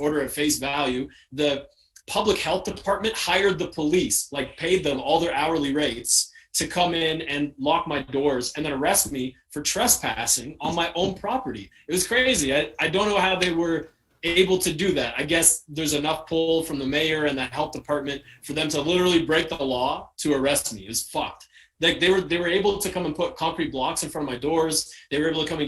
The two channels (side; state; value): both; identical; correlation 1.00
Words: at face value. The public health department hired the police, like paid them all their hourly rates to come in and lock my doors and then arrest me for trespassing on my own property. It was crazy. I don't know how they were able to do that. I guess there's enough pull from the mayor and the health department for them to literally break the law to arrest me. It was fucked. Like they were able to come and put concrete blocks in front of my doors. They were able to come